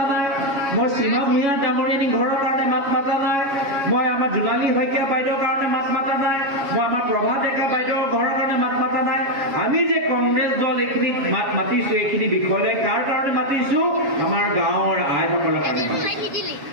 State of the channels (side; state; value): left; late; 7.2 ms